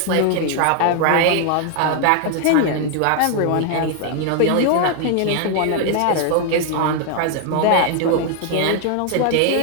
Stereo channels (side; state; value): both; different; correlation 0.00